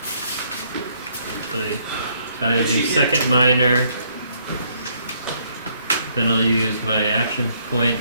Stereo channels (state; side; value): inverted; both; correlation -0.68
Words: So I do second minor. Then I'll use my action point